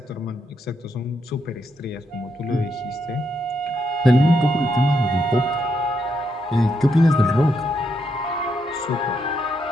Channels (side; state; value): both; normal; correlation 0.79